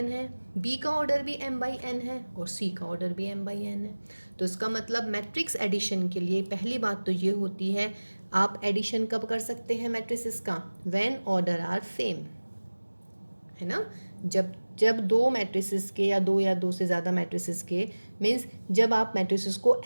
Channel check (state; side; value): inverted; both; correlation -1.00